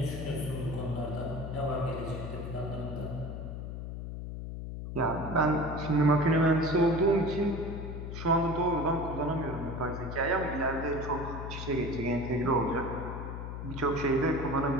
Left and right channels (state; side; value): noise; left; hum, 7 dB below the sound